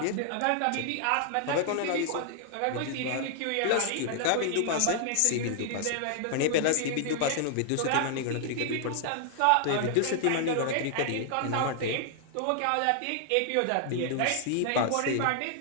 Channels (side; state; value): both; different; correlation -0.01